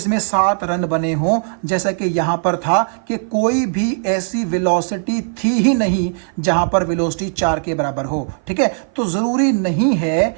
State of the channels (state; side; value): silent; left; 55 dB below the other